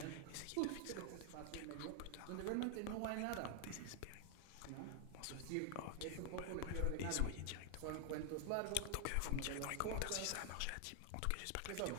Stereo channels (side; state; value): both; different; correlation 0.00